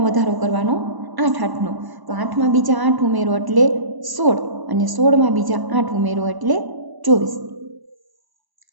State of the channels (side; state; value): left; late; 1.0 ms